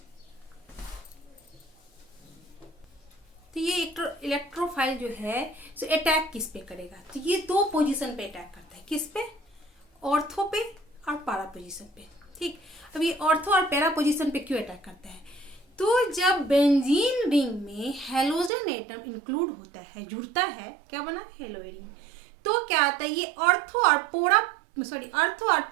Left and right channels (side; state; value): left; drops out; at 18.5 s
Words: तो ये इलेक्ट्रोफाइल जो है तो अटैक किस पे करेगा? तो ये दो पोजीशन पे अटैक करता है। किस पे? ऑर्थो पे और पैरा पोजीशन पे। ठीक, अब ये ऑर्थो और पैरा पोजीशन पे क्यों अटैक करता है? तो जब बेंजीन रिंग में हेलोजन एटम इंक्लूड होता है, जुड़ता है, क्या बना? Hello Adin. तो क्या आता है? ये ऑर्थो और